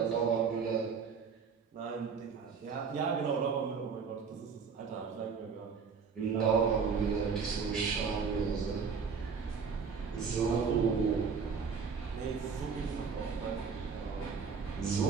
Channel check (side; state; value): left; quieter; 5.7 dB